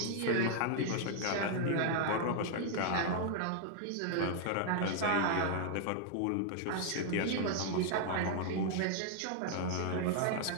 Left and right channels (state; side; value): different; both; correlation 0.00